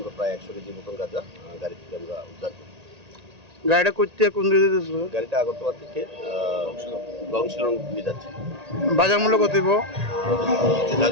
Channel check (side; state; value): left; late; 1.8 ms